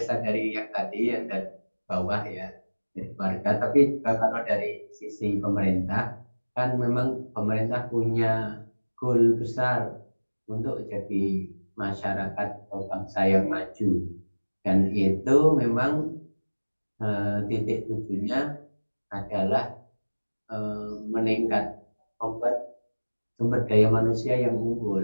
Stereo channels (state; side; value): inverted; both; correlation -1.00